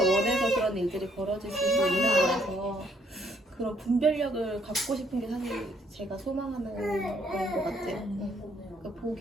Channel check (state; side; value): normal; both; correlation 0.68